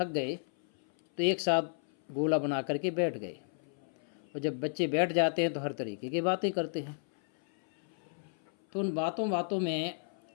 गए तो एक साथ गोला बना करके बैठ गए। और जब बच्चे बैठ जाते हैं तो हर तरीके की बातें करते हैं। तो उन बातों बातों में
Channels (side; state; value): right; silent; 56 dB below the other